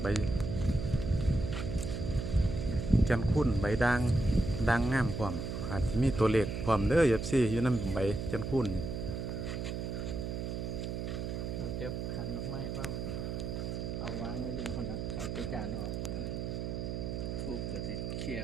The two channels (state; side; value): noise; right; hum, 3 dB below the sound